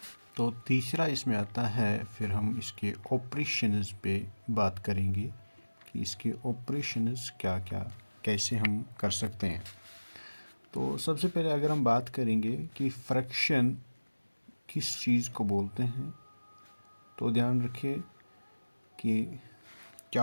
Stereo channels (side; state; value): both; inverted; correlation -1.00